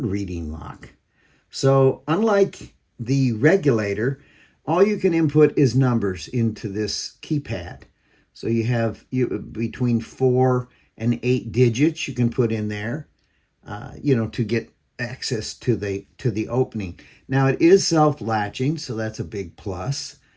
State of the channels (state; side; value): identical; both; correlation 1.00